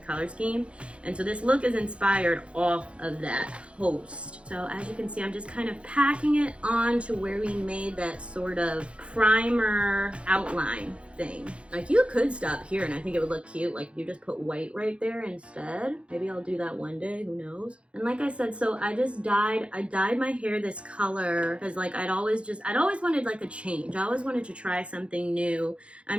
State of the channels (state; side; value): late; left; 0.060 ms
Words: scheme. And so this look is inspired off of that post. So as you can see, I'm just kind of packing it on to where we made that sort of primer outline thing. Like, you could stop here and I think it would look cute. Like, if you just put white right there instead. Maybe I'll do that one day, who knows? And like I said, so I dyed my hair this color because like I'd always wanted like a change. I always wanted to try something new.